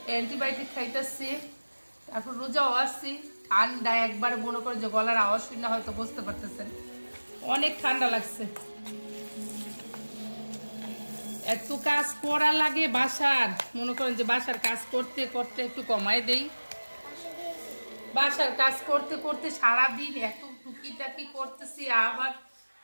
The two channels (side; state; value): both; inverted; correlation -1.00